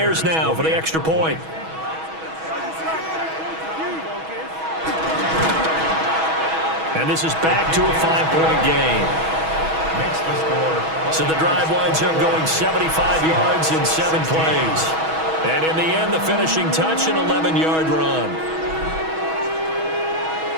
now for the extra point. And this is back to a 5-point game. Makes the score. So the drive winds up going 75 yards in 7 plays. And in the end, the finishing touch, an 11-yard run.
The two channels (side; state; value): left; late; 6.2 ms